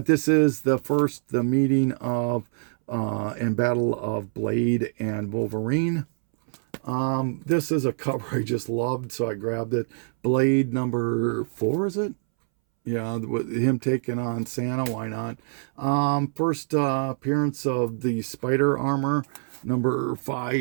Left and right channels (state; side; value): silent; left; 62 dB below the other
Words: this is the meeting of and battle of Blade and Wolverine. This is a cover I just loved, so I grabbed it. Blade number 4, is it? Yeah, with him taking on Santa, why not? First appearance of the Spider armor, number